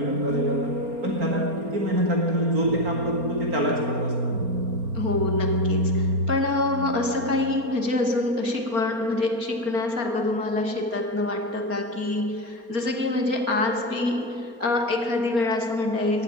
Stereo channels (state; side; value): late; left; 4.3 ms